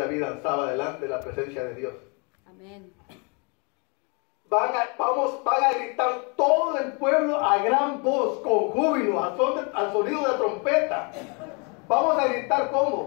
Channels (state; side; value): quieter; right; 33.7 dB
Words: danzaba delante de la presencia de Dios. Amén. Van a gritar todo el pueblo a gran voz, con júbilo, al sonido de trompeta. Vamos a gritar